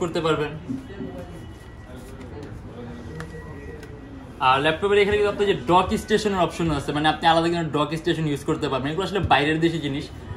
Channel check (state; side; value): identical; both; correlation 1.00